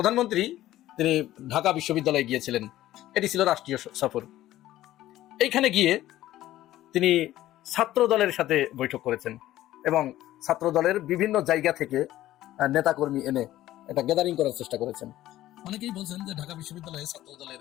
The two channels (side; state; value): right; quieter; 14.5 dB